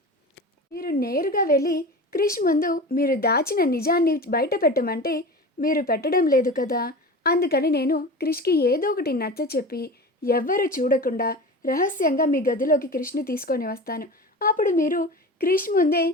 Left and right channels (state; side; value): normal; both; correlation 0.32